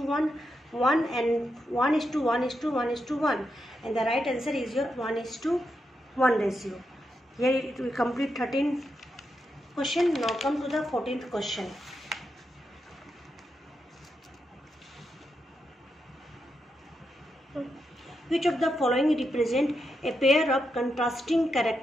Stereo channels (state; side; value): normal; both; correlation 0.84